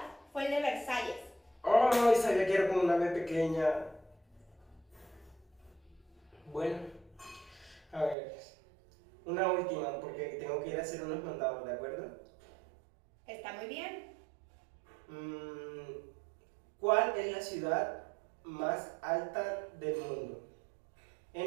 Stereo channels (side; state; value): left; drops out; at 8.2 s